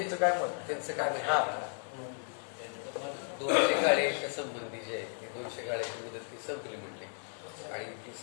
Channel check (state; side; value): silent; right; 55 dB below the other